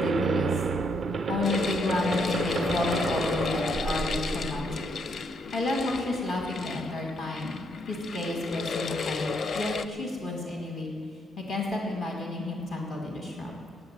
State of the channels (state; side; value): normal; both; correlation 0.74